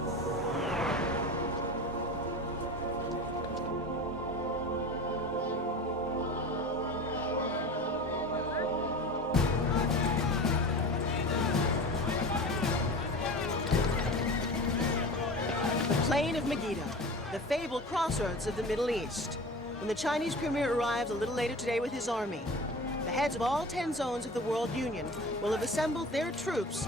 plain of Megiddo, the fabled crossroads of the Middle East. When the Chinese premier arrives a little later today with his army, the heads of all 10 zones of the World Union will have assembled their troops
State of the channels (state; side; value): normal; both; correlation 0.34